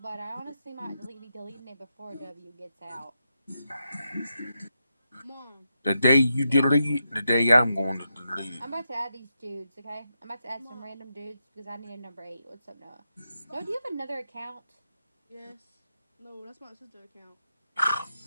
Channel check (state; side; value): inverted; both; correlation -0.86